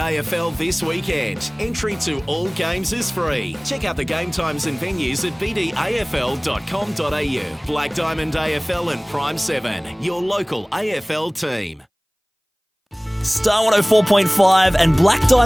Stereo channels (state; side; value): identical; both; correlation 1.00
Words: this weekend. Entry to all games is free. Check out the game times and venues at bdafl.com.au. Black Diamond AFL and Prime 7, your local AFL team. Star 104.5 and Black